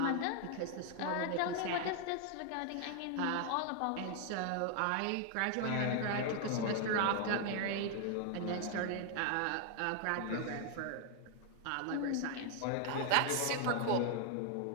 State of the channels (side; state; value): both; different; correlation 0.00